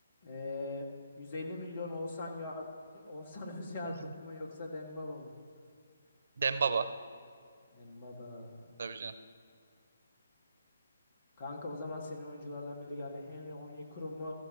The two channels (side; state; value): both; inverted; correlation -0.78